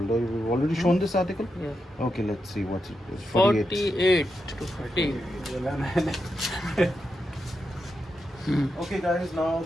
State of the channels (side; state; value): both; normal; correlation 0.86